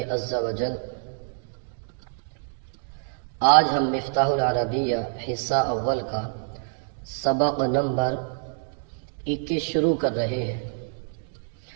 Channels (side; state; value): left; silent; digital silence